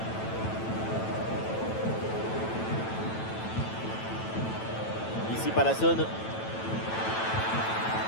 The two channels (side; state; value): right; late; 9.1 ms